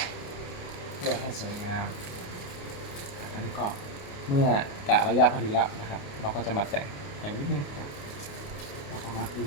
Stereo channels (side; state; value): right; late; 28 ms